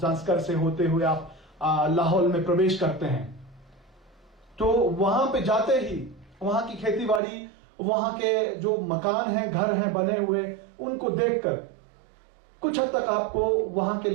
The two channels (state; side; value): drops out; left; at 7.2 s